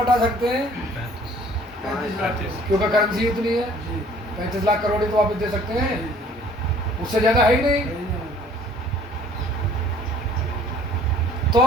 सकते हैं? 35 लाख, क्योंकि करेंसी इतनी है 35 लाख करोड़ ही तो वापस दे सकते हैं, उससे ज्यादा है ही नहीं। तो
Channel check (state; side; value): normal; both; correlation 0.54